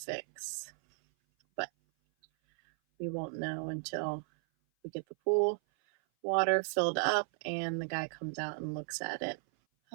But we won't know until we get the pool water filled up and the guy comes out and looks at it.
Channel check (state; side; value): silent; left; 55 dB below the other